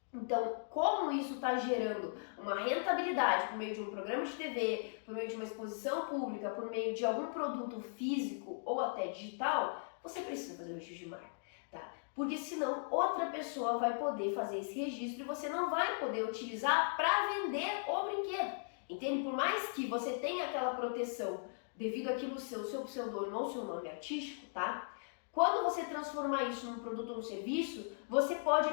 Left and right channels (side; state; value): right; silent; digital silence